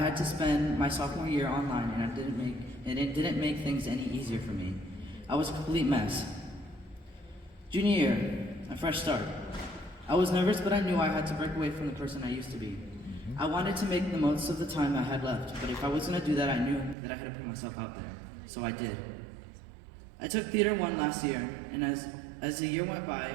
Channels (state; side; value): drops out; left; at 16.9 s